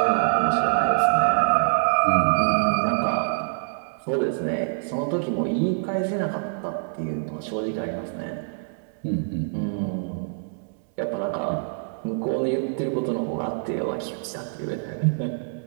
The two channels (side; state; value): left; silent; 62 dB below the other